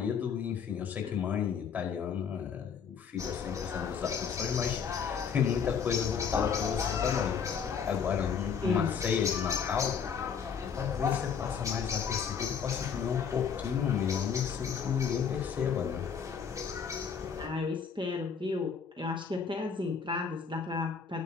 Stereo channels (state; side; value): quieter; right; 6.7 dB